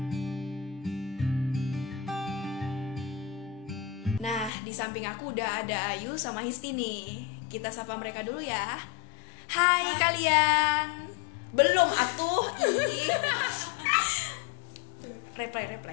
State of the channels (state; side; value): drops out; right; at 4.5 s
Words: Nah, di samping aku udah ada Ayu sama Histi nih. Kita sapa mereka dulu ya. Hai kalian. Belum atuh.